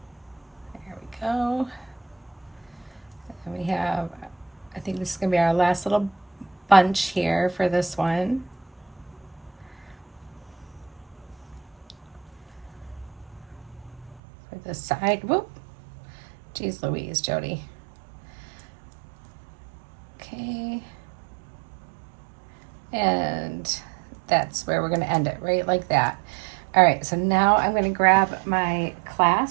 There we go. And we have, I think this is going to be our last little bunch here for this one. For this side. Whoop. Jeez Louise, Jody. Okay. And that's where we're going to end it, right? Like that. All right, so now I'm going to grab my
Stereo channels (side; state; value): left; drops out; at 14.2 s